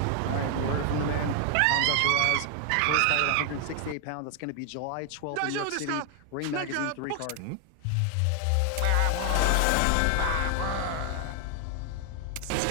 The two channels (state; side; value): different; both; correlation 0.00